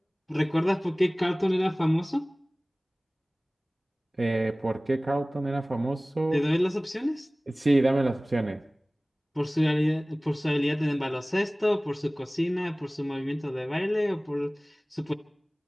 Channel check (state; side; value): normal; both; correlation 0.98